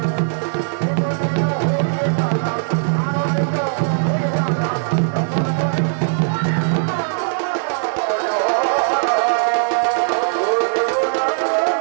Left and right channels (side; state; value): left; silent; digital silence